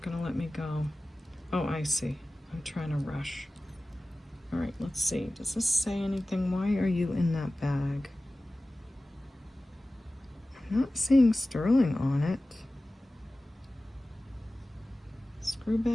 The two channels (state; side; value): normal; both; correlation 0.96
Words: gonna let me go. Oh, I see. I'm trying to rush. All right, let's see. Does this say anything? Why are you in that bag? I'm not seeing sterling on it. Screw